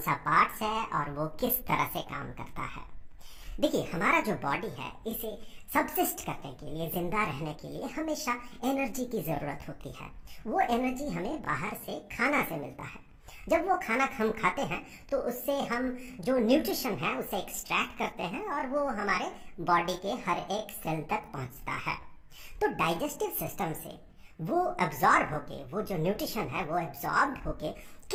पार्ट्स है और वो किस तरह से काम करता है। देखिए, हमारा जो बॉडी है इसे सबसिस्ट करने के लिए, जिंदा रहने के लिए हमेशा एनर्जी की ज़रूरत होती है। वो एनर्जी हमें बाहर से खाना से मिलता है। जब वो खाना हम खाते हैं तो उससे हम जो न्यूट्रिशन है उसे एक्सट्रैक्ट करते हैं और वो हमारे बॉडी के हर एक सेल तक पहुंचता है। तो डाइजेस्टिव सिस्टम से वो एब्जॉर्ब होके, वो जो न्यूट्रिशन है वो एब्जॉर्ब होके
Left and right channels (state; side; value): identical; both; correlation 1.00